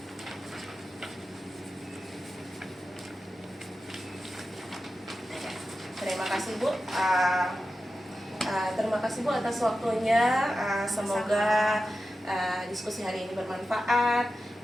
Terima kasih Bu. Terima kasih Bu atas waktunya. Semoga diskusi hari ini bermanfaat.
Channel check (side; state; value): both; normal; correlation 0.92